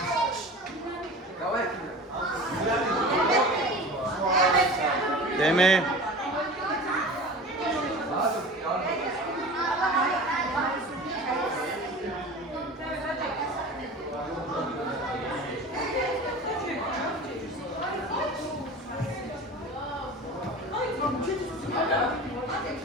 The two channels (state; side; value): normal; both; correlation 0.36